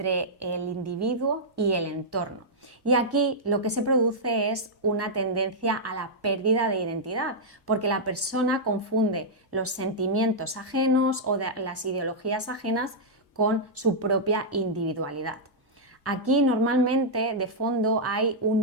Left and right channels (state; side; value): normal; both; correlation -0.08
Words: el individuo y el entorno. Y aquí lo que se produce es una tendencia a la pérdida de identidad, porque la persona confunde los sentimientos ajenos o las ideologías ajenas con su propia individualidad. Aquí normalmente de fondo hay